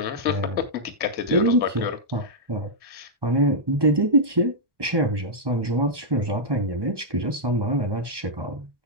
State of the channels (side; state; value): left; late; 1.2 ms